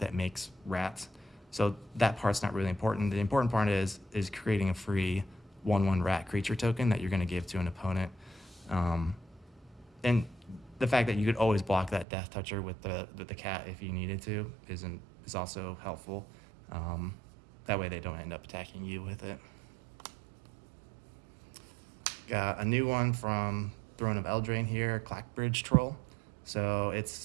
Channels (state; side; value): drops out; left; at 12.1 s